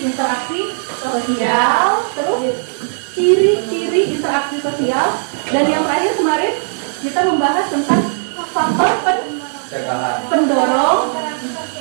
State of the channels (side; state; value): left; silent; digital silence